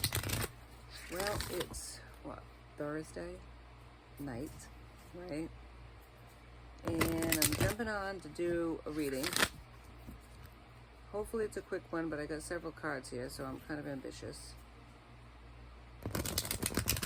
Well, it's, Thursday night, right? And I'm jumping on to do a reading. Hopefully it's a quick one, but I got several cards here, so I'm kind of ambitious.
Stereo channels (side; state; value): both; identical; correlation 1.00